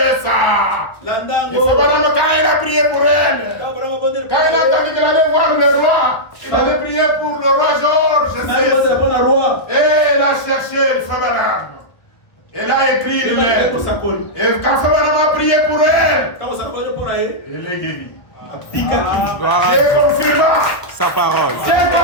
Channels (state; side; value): late; right; 1.2 ms